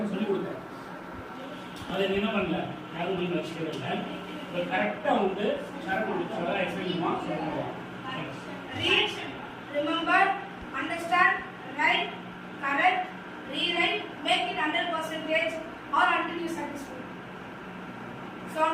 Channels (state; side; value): identical; both; correlation 1.00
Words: சொல்லி கொடுத்தேன். அதை என்ன பண்ணல யாரும் நீங்க வச்சுக்கவே இல்லை. கரெக்டா வந்து சரணம் எக்ஸ்பிளைன் சொல்லுவாங்க. Read, remember, understand, write, correct, rewrite, make it 100% or until you satisfied. 7